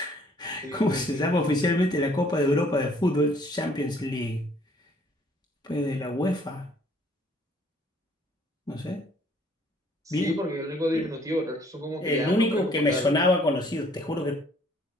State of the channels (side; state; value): both; normal; correlation 0.60